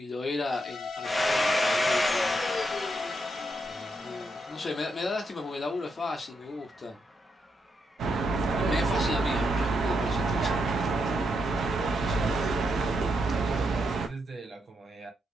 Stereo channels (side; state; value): both; normal; correlation 0.81